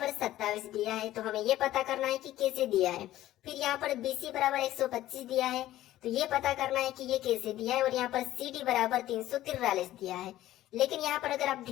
27 दिया है तो हमें ये पता करना है कि कैसे दिया है। फिर यहाँ पर BC बराबर 125 दिया है तो ये पता करना है कि ये कैसे दिया है। और यहाँ पर CD बराबर 343 दिया है। लेकिन यहाँ पर अगर आप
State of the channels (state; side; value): quieter; right; 14.4 dB